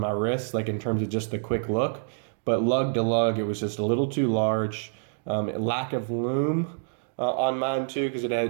wrist, like in terms of just the quick look. But lug to lug, it was just a little too large. Lack of lume on mine too, because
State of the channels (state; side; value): silent; left; 60 dB below the other